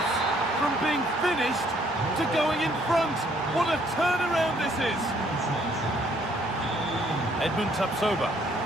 From being finished to going in front. What a turnaround this is! Edmund Tapsoba.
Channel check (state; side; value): normal; both; correlation 0.65